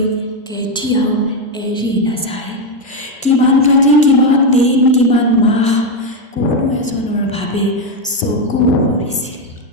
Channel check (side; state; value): both; normal; correlation 0.06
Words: কেতিয়াও এৰি নাযায়। কিমান ৰাতি, কিমান দিন, কিমান মাহ কোনো এজনৰ বাবে চকু ভৰিছিল,